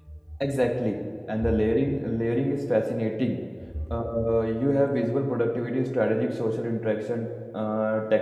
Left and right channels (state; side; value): identical; both; correlation 1.00